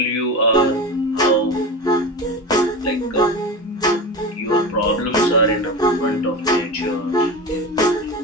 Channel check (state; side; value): normal; both; correlation 0.26